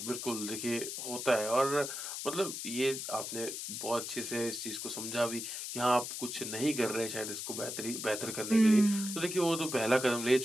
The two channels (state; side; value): noise; left; hiss, 6 dB below the sound